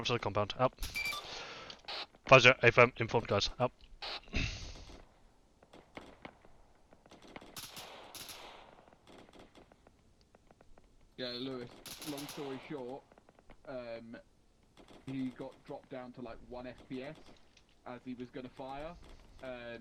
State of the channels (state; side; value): identical; both; correlation 1.00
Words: to the compound. Up. 50, A firm, informed guys. Up. Yeah, Lewis, long story short, he got dropped down to like 1 FPS as he was going to fire.